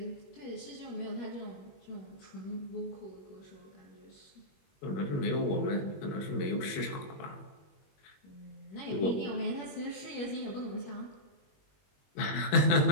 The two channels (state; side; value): late; right; 21 ms